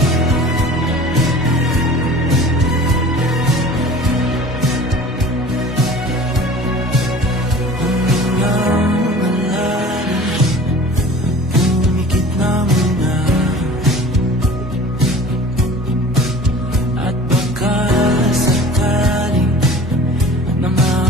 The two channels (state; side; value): normal; both; correlation 0.43